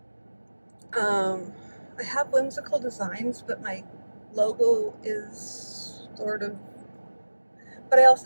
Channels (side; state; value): both; inverted; correlation -1.00